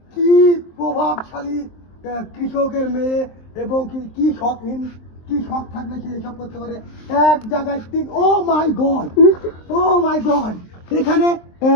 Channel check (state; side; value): late; right; 23 ms